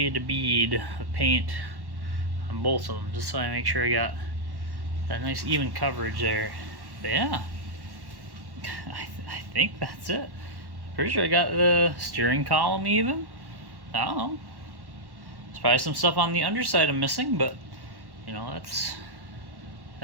a bead of paint on both of them just so I make sure I got that nice even coverage there. But yeah, I think that's it. Pretty sure I got the steering column even. I don't know. There's probably some stuff on the underside I'm missing, but you know,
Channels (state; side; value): late; left; 1.1 ms